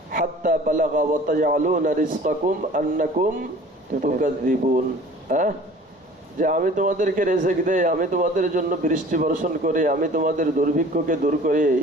হাত্তা বালাগা ওয়া তাজআলুনা রিজকাকুম আন্নাকুম তুকাযযিবুন, যে আমি তোমাদেরকে রিজিক দেই, আমি তোমাদের জন্য বৃষ্টি বর্ষণ করি, আমি তোমাদের দুর্ভিক্ষকে দূর করি,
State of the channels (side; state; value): both; normal; correlation 0.46